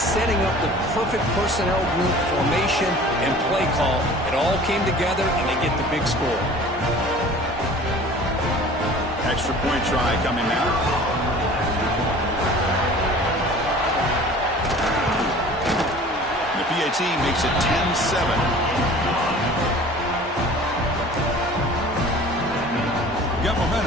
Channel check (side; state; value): both; normal; correlation 0.45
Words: up the perfect personnel group formation and play call. It all came together, and they get the big score. Extra point try coming now. The PAT makes it 10-7. Got